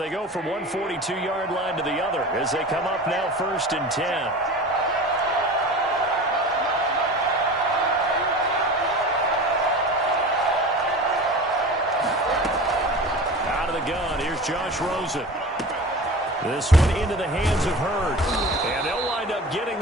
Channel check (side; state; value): both; normal; correlation 0.35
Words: go from one 42-yard line to the other as they come up now 1st and 10. Out of the gun, here's Josh Rosen. This one into the hands of Hurd. And they'll wind up getting